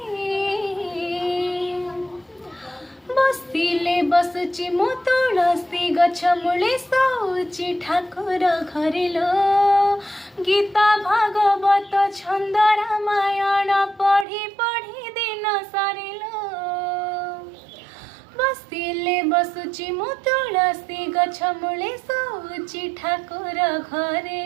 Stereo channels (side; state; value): left; drops out; at 14.2 s